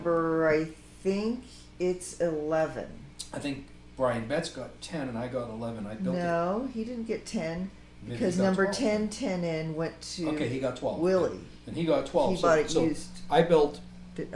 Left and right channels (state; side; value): identical; both; correlation 1.00